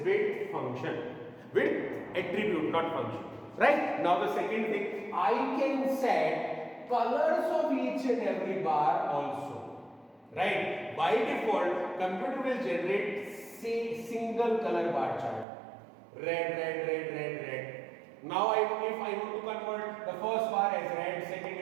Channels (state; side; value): drops out; left; at 15.5 s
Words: width function, width attribute, not function, right? Now the second thing, I can set colors of each and every bar also. right? By default, computer will generate say single color bar chart. Red, red, red, red, red. Now if I want to convert the first bar as red, second